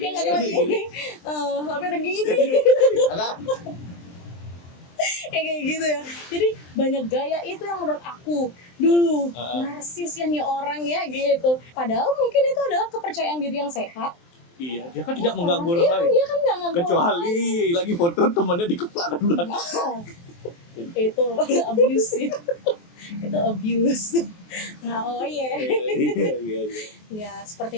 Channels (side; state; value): right; late; 23 ms